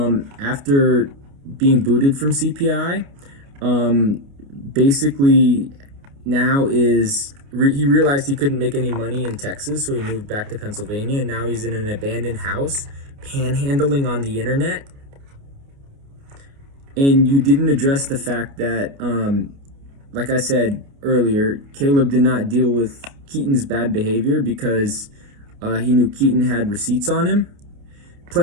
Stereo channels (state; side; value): late; left; 29 ms